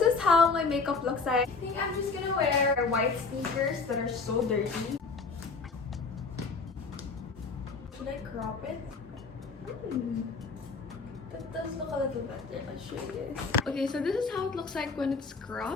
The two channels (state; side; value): quieter; right; 4.4 dB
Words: is how my makeup looks like. I think I'm just gonna wear white sneakers that are so dirty. Should I crop it? That does look a little better. I'll show you guys. Okay, so this is how it looks like when it's